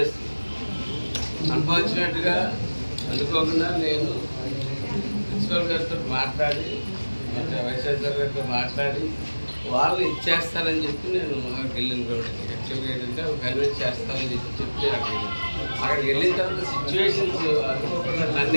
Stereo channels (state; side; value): inverted; both; correlation -1.00